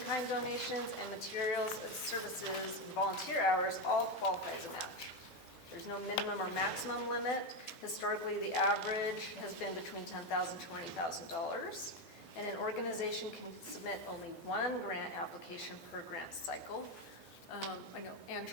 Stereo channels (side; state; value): both; normal; correlation 0.10